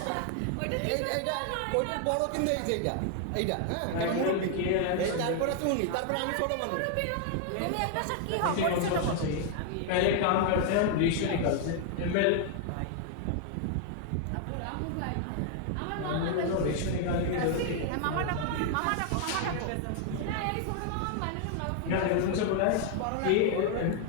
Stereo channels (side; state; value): both; different; correlation 0.00